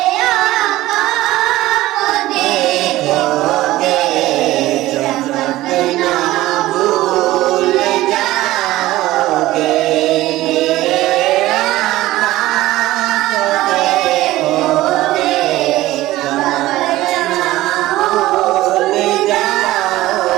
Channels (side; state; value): left; quieter; 16.6 dB